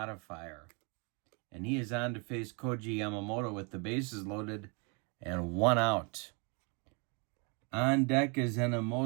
And he is on to face Koji Yamamoto with the bases loaded and 1 out. On deck is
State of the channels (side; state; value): left; quieter; 33.7 dB